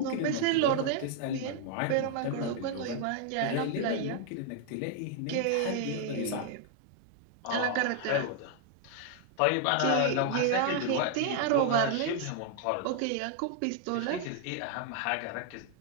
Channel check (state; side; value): different; both; correlation 0.00